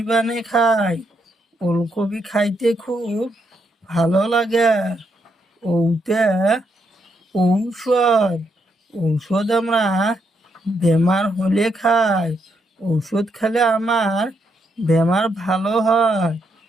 বানিয়ে খাই, ওলকবি খাইতে খুব ভালো লাগে। ওতে ঔষধ আমরা বেমার হলে খাই, ঔষধ খেলে আমার বেমার ভালো হয়।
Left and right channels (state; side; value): normal; both; correlation 0.78